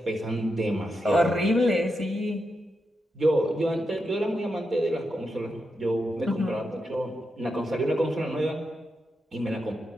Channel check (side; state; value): both; normal; correlation 0.86